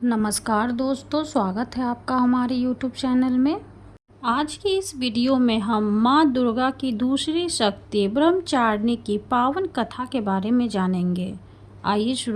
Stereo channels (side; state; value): both; identical; correlation 1.00